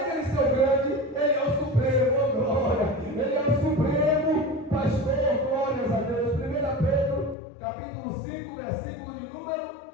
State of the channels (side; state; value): right; drops out; at 7.4 s